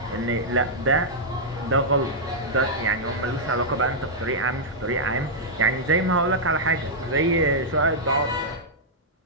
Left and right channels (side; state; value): both; normal; correlation -0.08